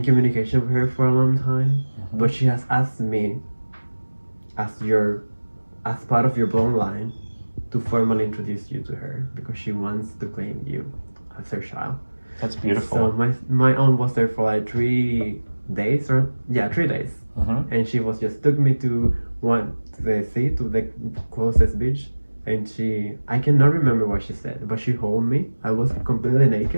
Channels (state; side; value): inverted; both; correlation -1.00